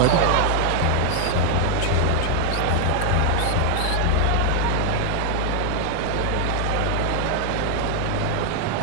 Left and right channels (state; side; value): different; both; correlation 0.00